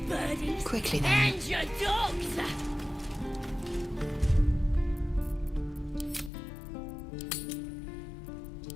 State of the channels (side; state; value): right; drops out; at 6.3 s